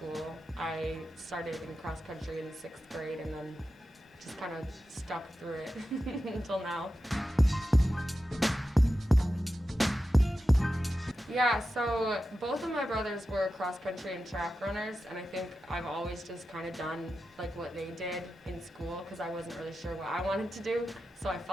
I started in cross country in 6th grade and then just kind of stuck through it until now. Yeah, so both of my brothers were cross country and track runners, and I think I've always just kind of done like what they did in school because I wasn't really sure what I wanted to do, so I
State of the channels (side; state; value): both; normal; correlation 0.91